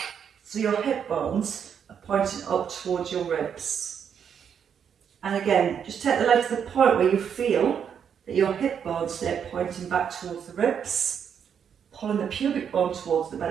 so your hip bones are pointing up towards your ribs. And again, just take the leg to the point where you feel that your hip bones stay pointing back towards the ribs, pulling the pubic bone towards the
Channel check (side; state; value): left; quieter; 7.8 dB